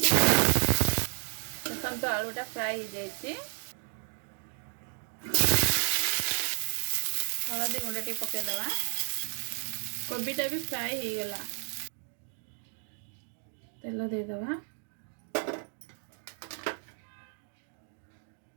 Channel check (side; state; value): left; silent; 56 dB below the other